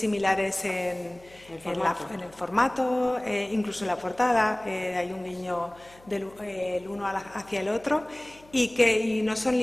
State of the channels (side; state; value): left; noise; hum, 26 dB below the sound